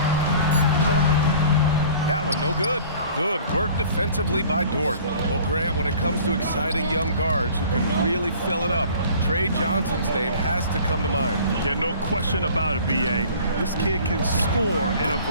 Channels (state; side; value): inverted; both; correlation -0.48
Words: That one, no good. Good work defensively by Dort. Well, Grant, when it comes to exciting young guards who can really fill it up, Trey Johnson's name has to come to mind. Yeah, no question about it, B.A. This kid can score in a